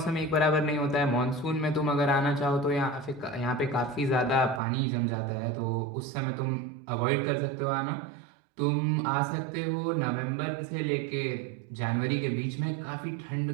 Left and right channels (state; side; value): drops out; left; at 4.6 s